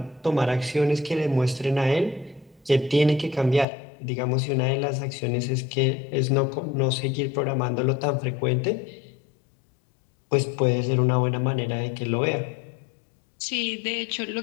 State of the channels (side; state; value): right; drops out; at 3.7 s